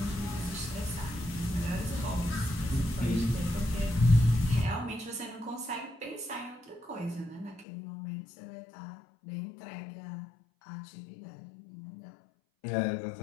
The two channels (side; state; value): right; drops out; at 7.7 s